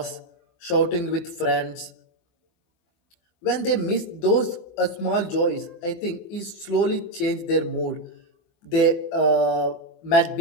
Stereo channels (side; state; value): right; late; 24 ms